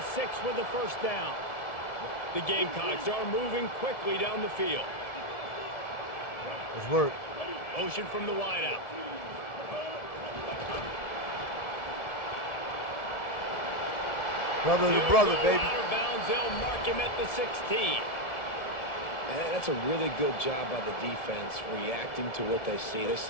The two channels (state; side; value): late; right; 1.7 ms